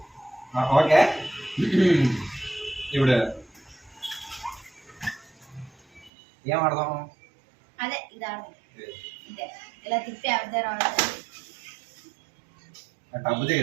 okay ఇప్పుడు ఏం ఆడదాం? అదే ఇది ఆడదాం. ఇదే ఇలా తిప్పి ఆడదాం రావాలి. డబ్బు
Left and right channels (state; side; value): drops out; left; at 6.1 s